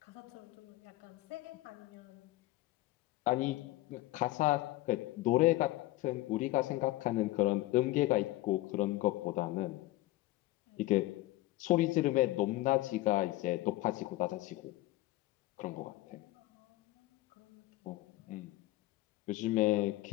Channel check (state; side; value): quieter; right; 17.6 dB